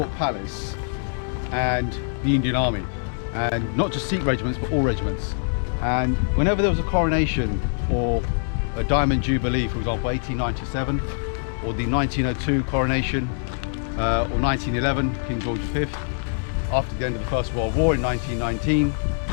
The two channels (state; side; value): silent; right; digital silence